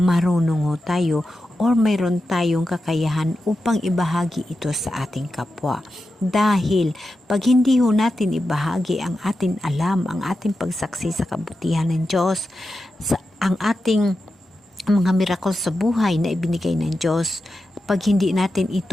marunong ho tayo or mayroon tayong kakayahan upang ibahagi ito sa ating kapwa. Dahil pag hindi ho natin ibahagi ang ating alam, ang ating pagsaksi sa kabutihan ng Diyos, ang ating mga miracle sa buhay na ibinigay ng Diyos, pag hindi natin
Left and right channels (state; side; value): normal; both; correlation 0.90